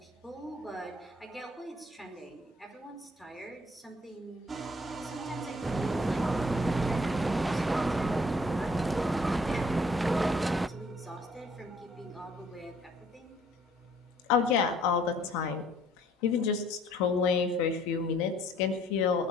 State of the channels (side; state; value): both; normal; correlation 0.60